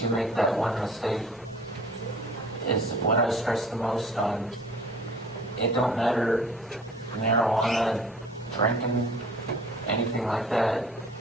you make that one mistake, is what I stress the most on. It don't matter, marijuana, drinking, anything like that.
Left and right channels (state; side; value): normal; both; correlation 0.49